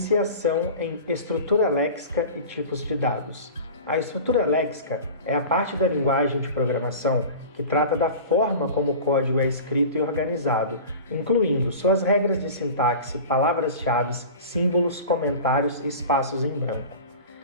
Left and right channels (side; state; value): both; inverted; correlation -0.36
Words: em estrutura léxica e tipos de dados. A estrutura léxica é a parte da linguagem de programação que trata da forma como o código é escrito e organizado, incluindo suas regras de sintaxe, palavras-chave, símbolos, comentários e espaços em branco.